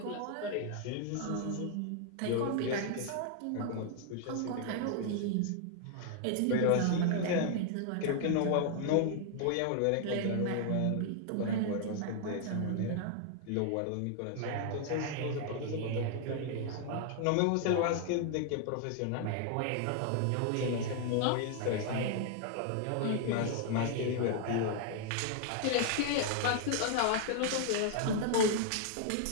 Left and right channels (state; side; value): different; both; correlation 0.00